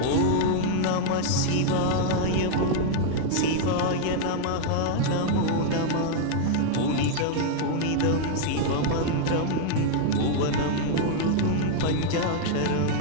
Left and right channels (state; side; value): different; both; correlation -0.01